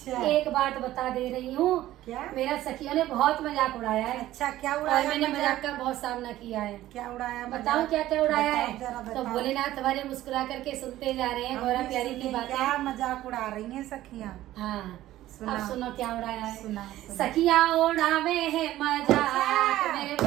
एक बात बता दे रही हूँ। क्या? मेरा सखियों ने बहुत मजाक उड़ाया है। अच्छा, क्या और उड़ाया? मैंने मजाक का बहुत सामना किया है। क्या उड़ाया? बताऊं क्या क्या उड़ाया है? जरा तो बताओ। भोलेनाथ हमारे मुस्कुरा करके सुनते जा रहे हैं हम गौरा भी प्यारी की सुने, बातें। क्या मजाक उड़ा रही हैं सखियाँ? हाँ, सुना। अब सुनो क्या उड़ाया है। सुना। सखियाँ उड़ावे है मजाक मेरे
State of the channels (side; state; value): left; quieter; 14.7 dB